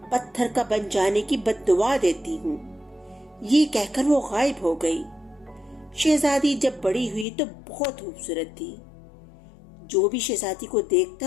پتھر کا بن جانے کی بد دعا دیتی ہوں۔ یہ کہہ کر وہ غائب ہو گئی۔ شہزادی جب بڑی ہوئی تو بہت خوبصورت تھی۔ جو بھی شہزادی کو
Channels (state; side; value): drops out; right; at 7.2 s